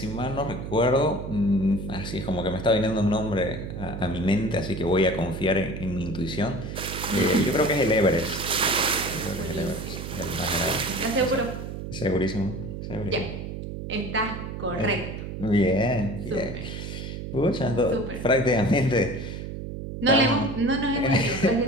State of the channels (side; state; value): right; noise; hum, 7 dB below the sound